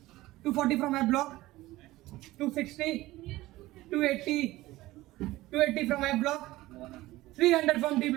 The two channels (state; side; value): quieter; left; 17.7 dB